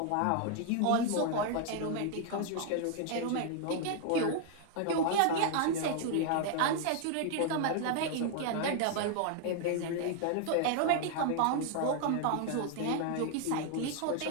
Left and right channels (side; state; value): both; different; correlation 0.00